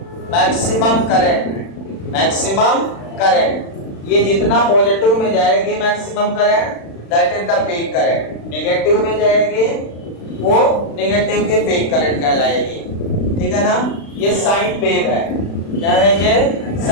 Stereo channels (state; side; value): late; right; 36 ms